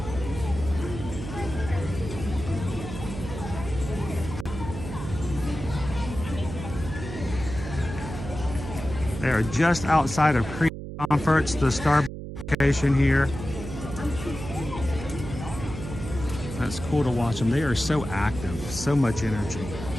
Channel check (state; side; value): noise; right; hum, 9 dB below the sound